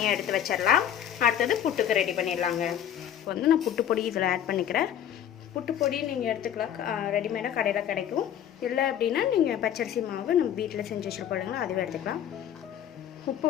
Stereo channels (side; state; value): right; quieter; 10.1 dB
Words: எடுத்து வச்சிடலாம். அடுத்தது புட்டுக்கு ரெடி பண்ணிடலாங்க. இப்போ நான் புட்டு பொடி இதில் ஆட் பண்ணிக்கிறேன். புட்டு பொடி நீங்கள் எடுத்துக்கலாம், ரெடிமேடாக கடையில் கிடைக்கும். இல்லை அப்படின்னா நீங்கள் பச்சரிசி மாவு நம்ம வீட்டில் செஞ்சு வச்சுருப்போம், அதுவே எடுத்துக்கலாம்.